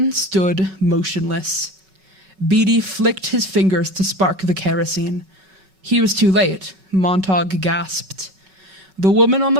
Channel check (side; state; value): left; late; 5.3 ms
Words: stood motionless. Beatty flicked his fingers to spark the kerosene. He was too late. Montauk gasped. The woman on